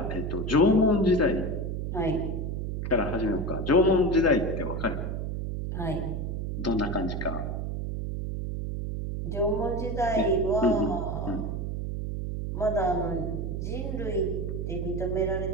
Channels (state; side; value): noise; right; hum, 3 dB below the sound